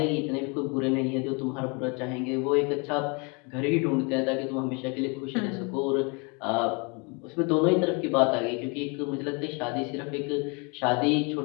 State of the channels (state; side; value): quieter; right; 31.8 dB